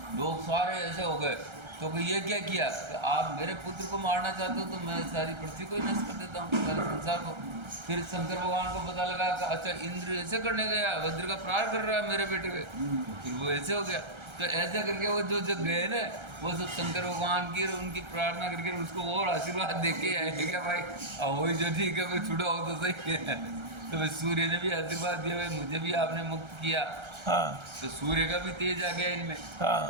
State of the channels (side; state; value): left; late; 1.3 ms